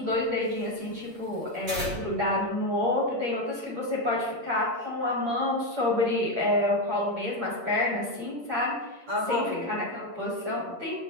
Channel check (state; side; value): late; left; 8.5 ms